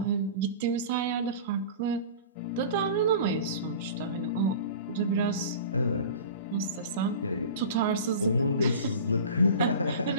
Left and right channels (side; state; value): both; inverted; correlation -0.37